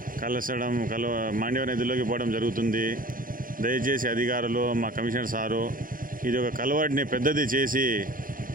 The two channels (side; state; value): left; late; 0.40 ms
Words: మాండ్యవ నదిలోకి పోవడం జరుగుతుంది. దయచేసి అధికారులు, మా కమిషనర్ సారు ఇది ఒక కలవాడిని పెద్దది చేసి